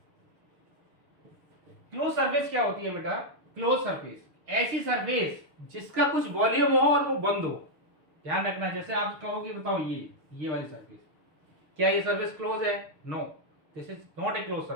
क्लोज सरफेस क्या होती है बेटा? क्लोज सरफेस ऐसी सरफेस जिसका कुछ वॉल्यूम हो और वो बंद हो। ध्यान रखना, जैसे आप कहोगे बताओ ये वाली सरफेस, क्या ये सरफेस क्लोज है? No, this is not a close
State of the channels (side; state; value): left; late; 6.4 ms